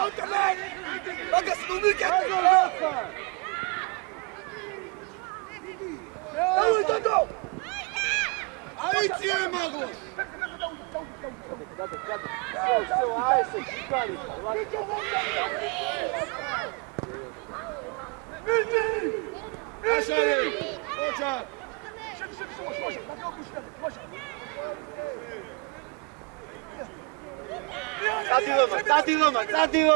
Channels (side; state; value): left; quieter; 31.8 dB